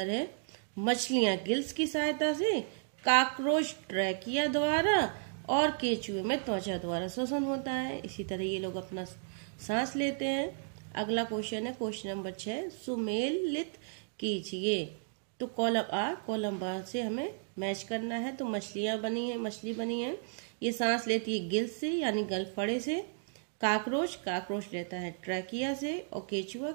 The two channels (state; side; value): silent; left; digital silence